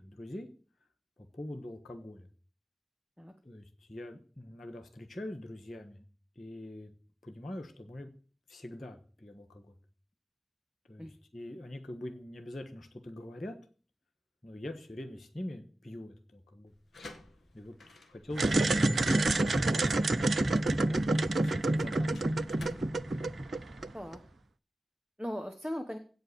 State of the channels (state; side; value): normal; both; correlation 0.93